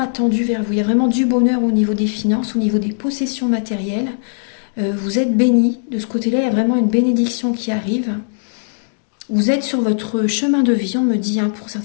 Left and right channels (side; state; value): right; silent; digital silence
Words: vers vous. Il y a vraiment du bonheur au niveau des finances, au niveau des possessions matérielles. Vous êtes bénis. De ce côté-là, il y a vraiment une bénédiction qui arrive. Vous êtes sur votre chemin de vie, on me dit, hein, pour